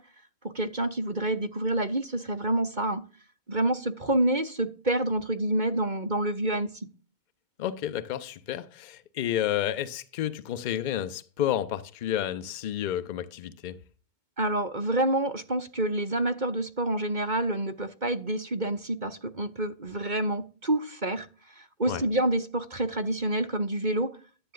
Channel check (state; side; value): late; left; 2.2 ms